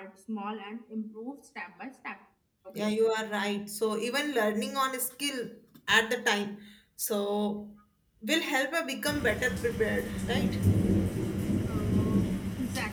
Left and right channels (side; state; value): both; identical; correlation 1.00